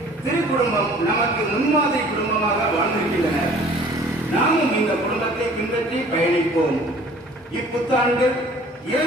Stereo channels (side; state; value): both; normal; correlation 0.50